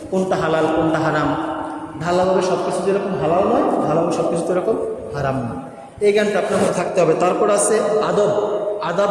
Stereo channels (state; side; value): identical; both; correlation 1.00